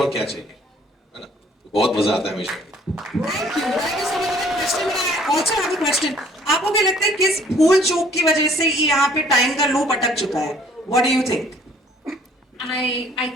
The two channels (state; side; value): normal; both; correlation 0.58